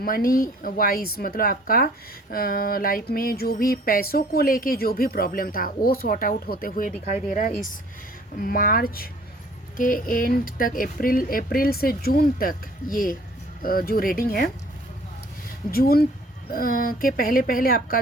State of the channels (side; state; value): both; normal; correlation 0.54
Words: वाइज, मतलब आपका लाइफ में जो भी पैसों को लेके जो भी प्रॉब्लम था वो सॉर्ट आउट होते हुए दिखाई दे रहा है। इस मार्च के एंड तक, अप्रैल से जून तक ये जो रीडिंग है, जून के पहले पहले आपका